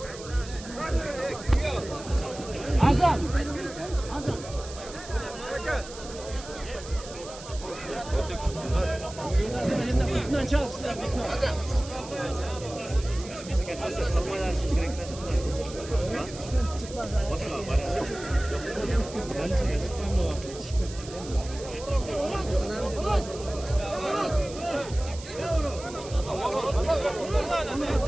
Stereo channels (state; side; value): noise; right; hiss, 15 dB below the sound